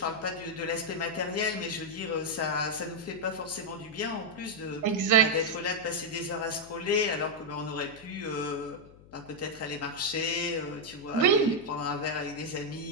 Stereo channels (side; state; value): left; noise; hum, 22 dB below the sound